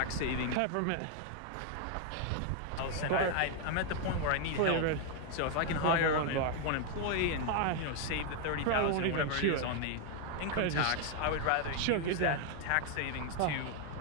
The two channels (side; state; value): both; different; correlation 0.01